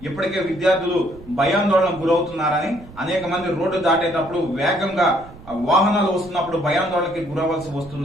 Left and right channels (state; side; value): noise; right; rumble, 20 dB below the sound